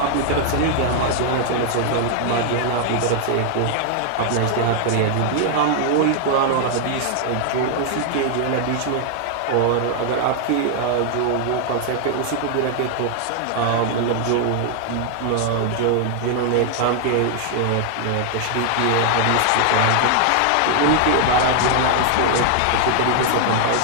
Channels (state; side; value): different; both; correlation 0.00